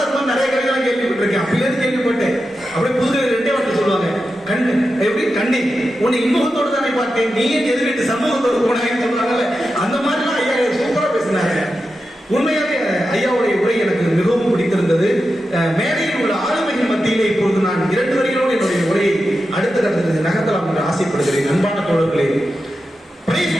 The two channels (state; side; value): normal; both; correlation 0.90